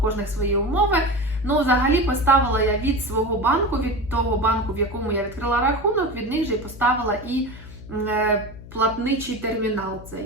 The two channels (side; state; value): left; noise; hum, 16 dB below the sound